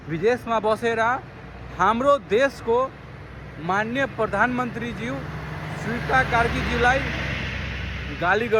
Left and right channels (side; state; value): both; identical; correlation 1.00